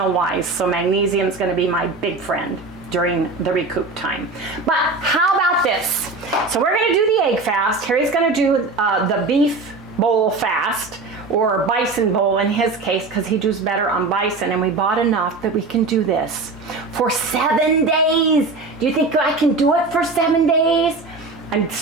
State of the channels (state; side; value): quieter; left; 3.6 dB